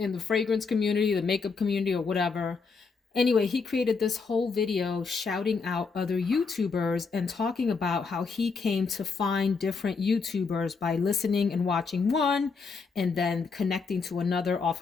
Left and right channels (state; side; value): quieter; right; 4.8 dB